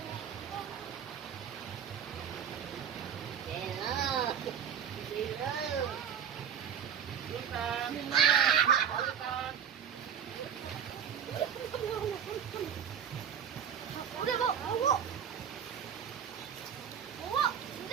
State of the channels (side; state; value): left; quieter; 8.2 dB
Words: Udah, Bu. Bu.